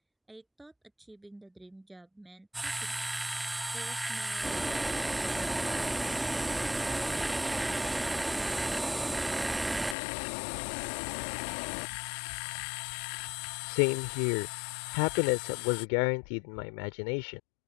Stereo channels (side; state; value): right; drops out; at 10.0 s